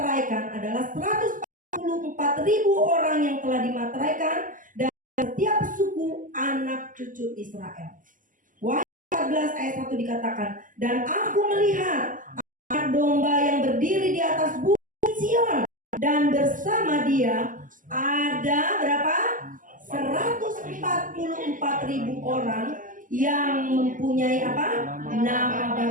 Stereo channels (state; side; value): late; left; 0.38 ms